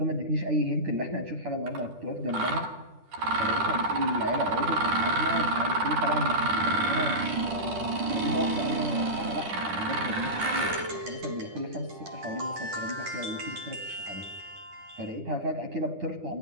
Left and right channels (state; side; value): late; left; 10 ms